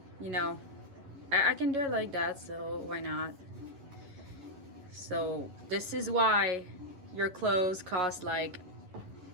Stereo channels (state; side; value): late; left; 11 ms